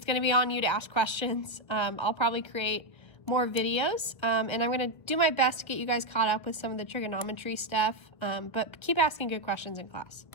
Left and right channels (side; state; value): right; late; 1.5 ms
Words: be on you to ask questions. I'll probably create more videos, and I'm going to do my best to get you guys caught up with some of the trigonometry stuff, but keep asking good questions in class.